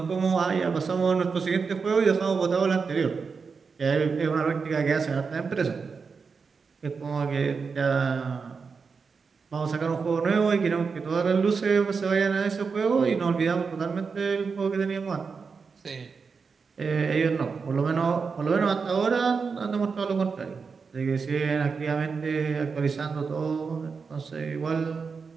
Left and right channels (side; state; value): left; quieter; 5.2 dB